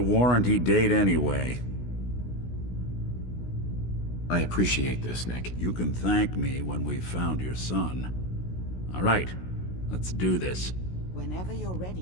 date anyway. I appreciate this, Nick. You can thank me when we've found your son. All right, let's do this. Whenever you're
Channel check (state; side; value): late; right; 16 ms